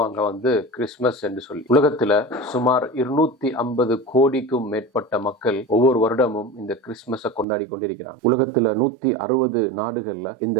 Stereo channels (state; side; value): drops out; left; at 7.5 s